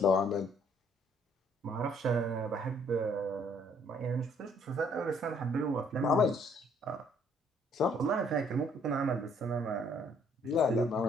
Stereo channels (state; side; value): normal; both; correlation 0.64